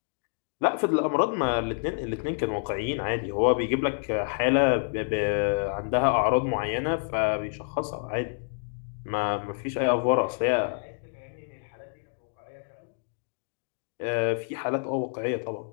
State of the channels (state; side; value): silent; right; digital silence